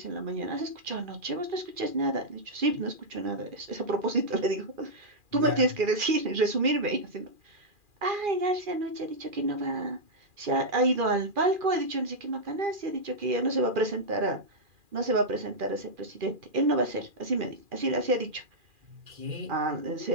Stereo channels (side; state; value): left; late; 2.4 ms